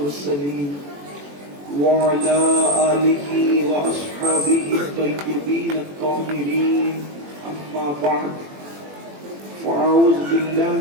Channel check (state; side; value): late; left; 21 ms